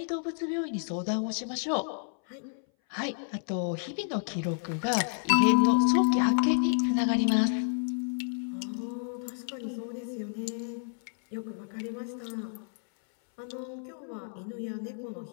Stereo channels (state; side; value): silent; right; 58 dB below the other